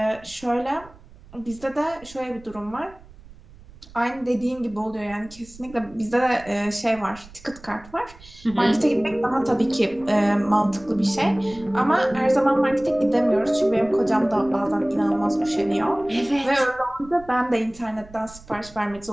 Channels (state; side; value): noise; right; rumble, 21 dB below the sound